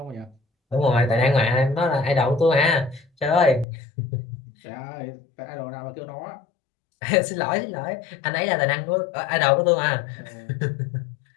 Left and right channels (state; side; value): drops out; right; at 3.7 s